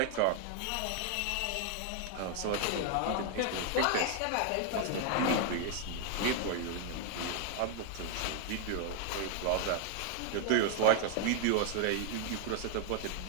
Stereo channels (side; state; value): both; different; correlation 0.00